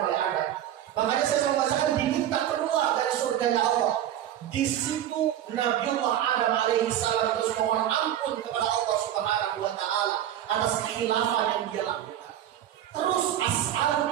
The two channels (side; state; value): left; quieter; 11.5 dB